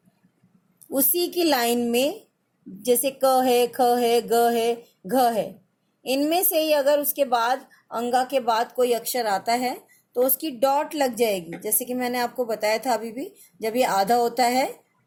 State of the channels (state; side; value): identical; both; correlation 1.00